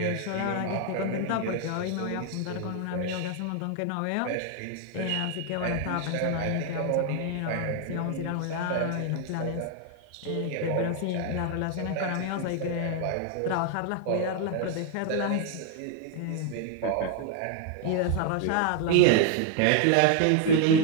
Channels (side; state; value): both; different; correlation 0.00